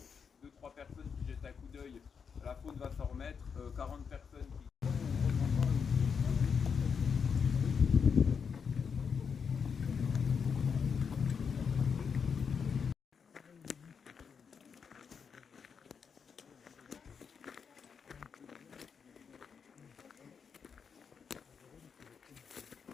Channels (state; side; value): quieter; right; 6.3 dB